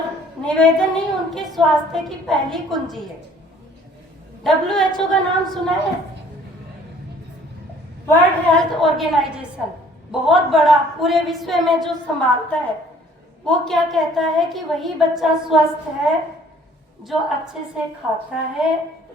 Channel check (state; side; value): normal; both; correlation 0.56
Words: निवेदन नहीं, उनके स्वास्थ्य की पहली कुंजी है। WHO का नाम सुना है? वर्ल्ड हेल्थ ऑर्गेनाइजेशन, बहुत बड़ा, पूरे विश्व में जो संभालता है, वो क्या कहता है कि वही बच्चा स्वस्थ है जो अच्छे से खाता है,